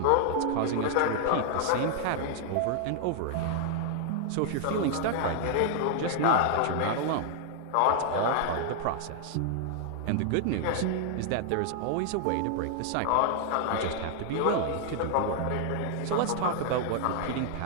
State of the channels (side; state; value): both; different; correlation 0.00